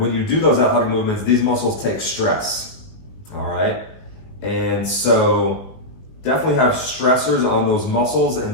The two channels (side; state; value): right; late; 19 ms